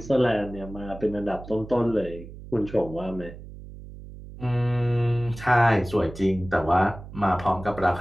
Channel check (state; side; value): noise; right; hum, 15 dB below the sound